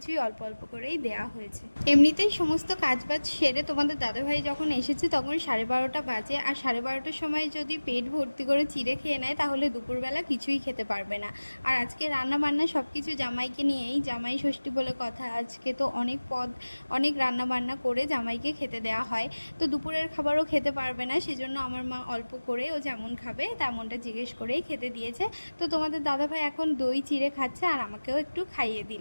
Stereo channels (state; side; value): inverted; both; correlation -1.00